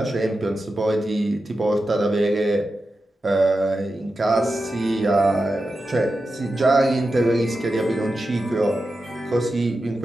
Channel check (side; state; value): both; normal; correlation 0.91